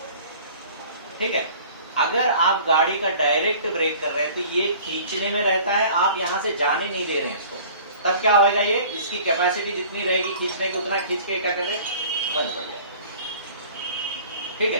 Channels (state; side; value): inverted; both; correlation -0.47